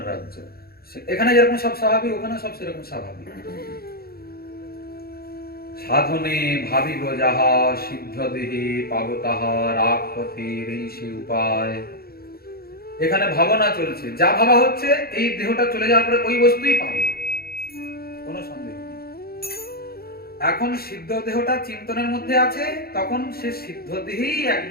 রাজ্য। এখানে যেরকম সব স্বাভাবিক, ওখানে সব সেরকম স্বাভাবিক। সাধনে ভাবিব যাহা, সিদ্ধ দেহে পাব তাহা, রাগ পথের এই সে উপায়। এখানে ভাবনা চলছে, যা ভাবা হচ্ছে এই দেহটা চলে যাওয়ার পরে ওই বস্তুই পাবে, কোনো সন্দেহ নেই। এখন সিদ্ধ দেহটা চিন্তনের মধ্যে আছে, তখন সে সিদ্ধ দেহেই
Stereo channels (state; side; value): late; right; 0.44 ms